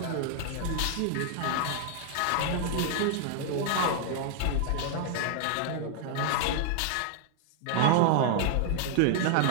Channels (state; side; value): different; both; correlation 0.00